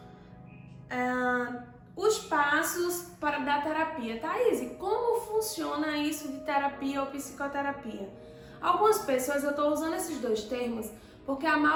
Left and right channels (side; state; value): both; identical; correlation 1.00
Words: Os passos da terapia. Thaís, como funciona isso de terapia ou psicoterapia? Algumas pessoas, eu estou usando esses dois termos porque a